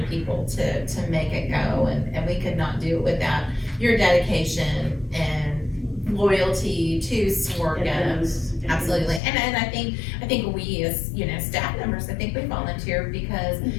people to make it go, and we could not do it without your dedication and loyalty to Sworga. It is. It Absolutely, is. and I think we as, you know, staff members, I think we volunteer because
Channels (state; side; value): drops out; right; at 9.2 s